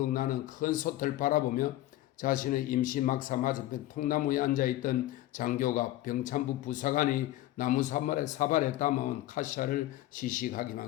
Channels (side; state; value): right; quieter; 15.4 dB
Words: 나는 큰 솥을 바라보며 자신의 임시 막사 맞은편 통나무에 앉아있던 장교가 병참부 부사관이 나무 사발에 담아온 카시아를